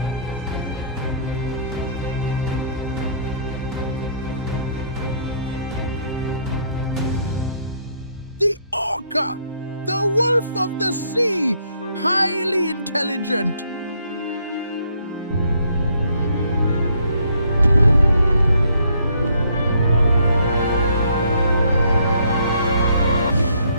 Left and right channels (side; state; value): both; inverted; correlation -0.66